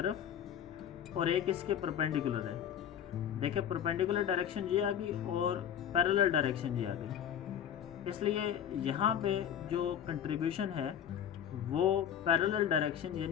और एक इसके परपेंडिकुलर है। देखिए परपेंडिकुलर डायरेक्शन ये आ गई और पैरेलल डायरेक्शन ये आ गई, इसलिए यहाँ पे जो कंट्रीब्यूशन है वो पैरेलल डायरेक्शन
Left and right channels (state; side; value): quieter; right; 9.3 dB